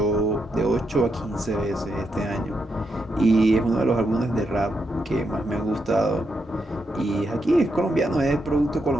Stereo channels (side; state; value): both; normal; correlation 0.82